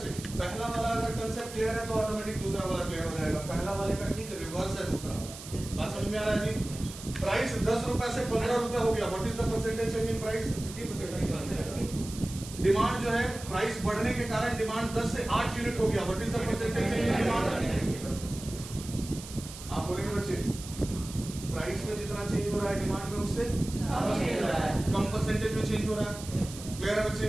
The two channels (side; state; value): right; noise; hiss, 13 dB below the sound